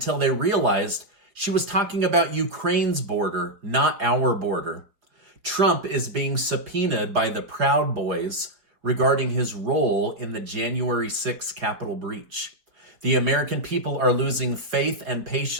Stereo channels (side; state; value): left; late; 4.9 ms